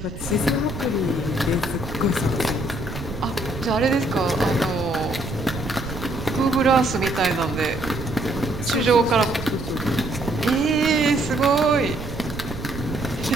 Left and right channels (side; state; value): right; noise; rumble, 9 dB below the sound